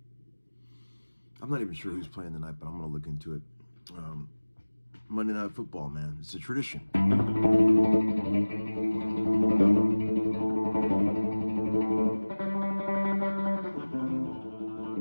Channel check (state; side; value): inverted; both; correlation -1.00